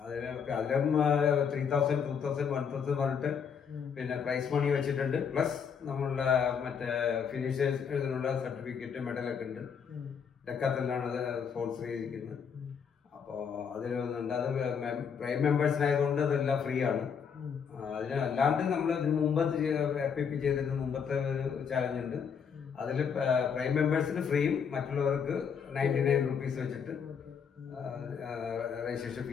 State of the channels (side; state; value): right; quieter; 6.8 dB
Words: അതിലും 3,000, 2,000, 1,000 പറഞ്ഞിട്ട് പിന്നെ പ്രൈസ് മണി വെച്ചിട്ടുണ്ട്. പ്ലസ് നമ്മളുടെ മറ്റേ ഫിനിഷേഴ്സിനുള്ള സർട്ടിഫിക്കറ്റ് മെഡലൊക്കെ ഉണ്ട്. ഡെക്കാത്തലാണ് അത് സ്പോൺസർ ചെയ്തിരിക്കുന്നത്. അപ്പോൾ അതിൽ വന്നിട്ടുണ്ട്. അത് പ്രൈം മെമ്പേഴ്സിനായതുകൊണ്ട് അതെല്ലാം ഫ്രീ ആണ്. അതിന് അല്ലാണ്ട് നമ്മൾ ഇതിന് മുമ്പ് FIP ചെയ്തിരുന്ന മുമ്പത്തെ ഒരു ചാലഞ്ച് ഉണ്ട്. അതിൽ പ്രൈം മെമ്പേഴ്സിന് ഫ്രീയും മറ്റുള്ളവർക്ക് 99 റുപ്പീസ് വെച്ചിട്ട് രജിസ്ട്രേഷൻ